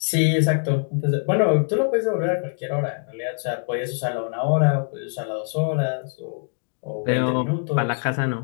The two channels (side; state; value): right; silent; digital silence